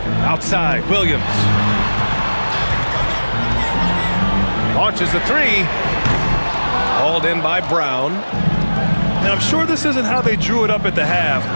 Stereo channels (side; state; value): both; inverted; correlation -1.00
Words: Outside, Williams. Launches the three. Hauled in by Brown. And I'm sure this isn't how they drew it up at the half.